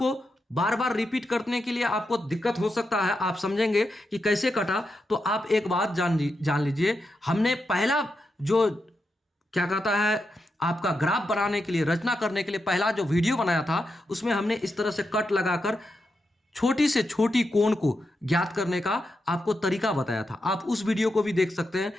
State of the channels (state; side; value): normal; both; correlation 0.86